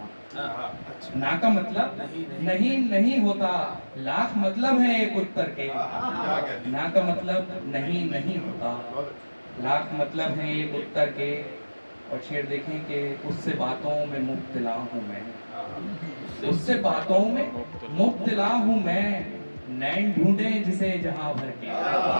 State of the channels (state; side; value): inverted; both; correlation -1.00